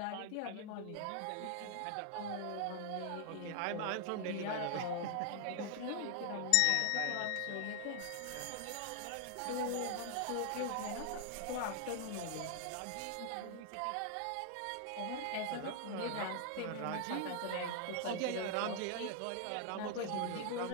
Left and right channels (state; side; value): different; both; correlation 0.00